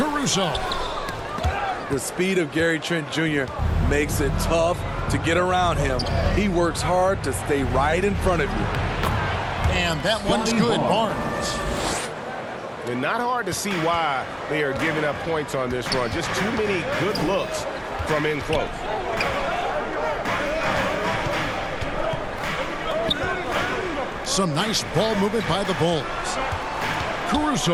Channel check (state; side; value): identical; both; correlation 1.00